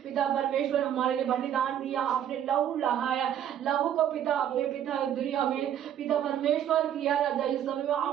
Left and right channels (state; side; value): quieter; left; 10.1 dB